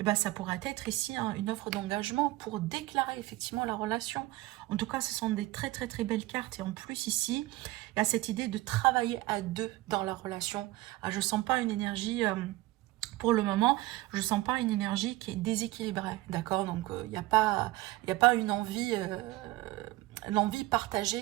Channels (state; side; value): quieter; left; 18.3 dB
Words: ça pourrait être ici hein, une offre d'engagement pour déclarer effectivement la relation. En tout cas, ce sont des très très très belles cartes et en plus ici, il y a cette idée de travailler à deux dans la relation. Ah, je ne sens pas une énergie, pour le moment, je ne sens pas une énergie qui est déséquilibrée, d'accord? Donc, il n'y a pas une envie